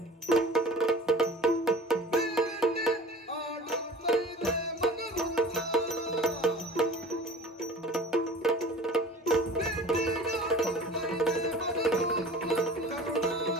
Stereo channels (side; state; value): both; normal; correlation 0.42